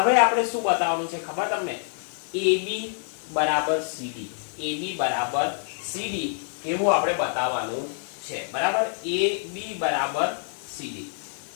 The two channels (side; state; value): right; silent; 61 dB below the other